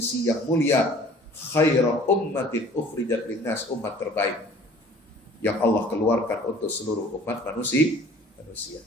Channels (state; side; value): normal; both; correlation 0.50